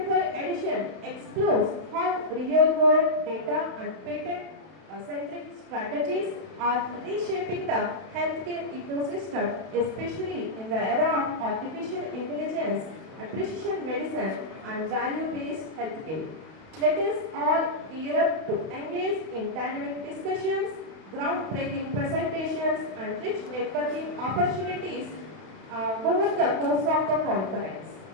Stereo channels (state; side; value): late; left; 32 ms